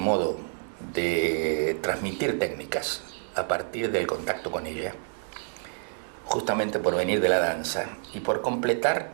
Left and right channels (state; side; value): silent; left; digital silence